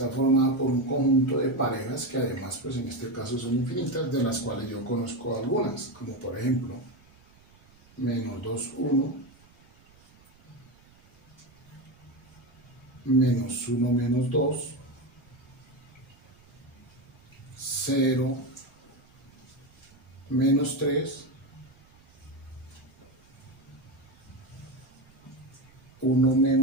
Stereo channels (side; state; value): right; noise; rumble, 28 dB below the sound